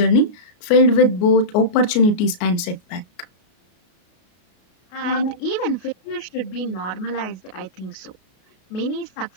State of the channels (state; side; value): late; right; 33 ms